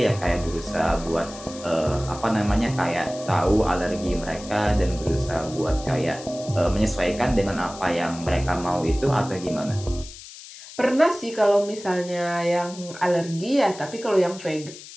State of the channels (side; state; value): left; noise; hiss, 16 dB below the sound